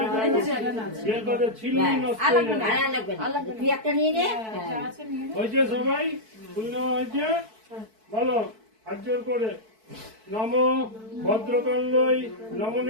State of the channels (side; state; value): left; late; 4.6 ms